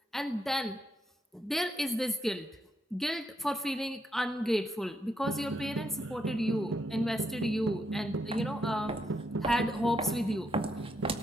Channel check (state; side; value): normal; both; correlation 0.78